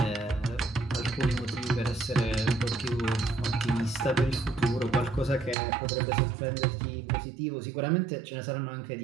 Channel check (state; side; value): drops out; left; at 5.6 s